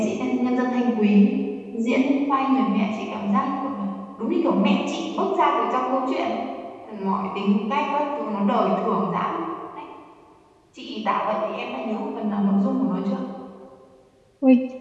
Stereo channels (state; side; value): identical; both; correlation 1.00